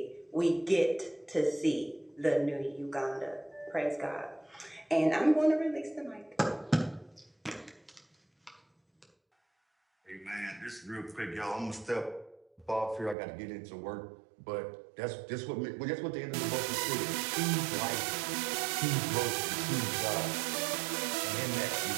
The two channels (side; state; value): left; drops out; at 13.2 s